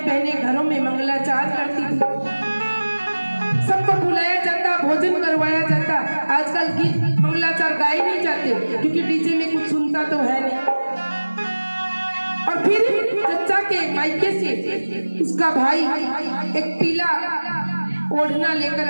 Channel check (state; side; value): inverted; both; correlation -1.00